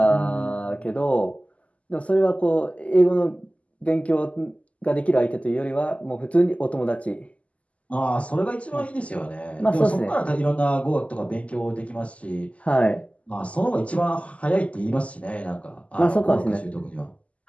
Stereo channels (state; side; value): late; right; 0.066 ms